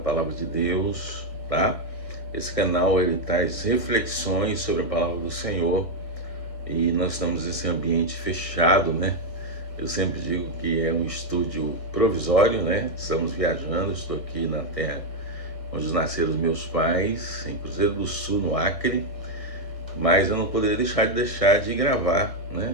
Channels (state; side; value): late; right; 1.7 ms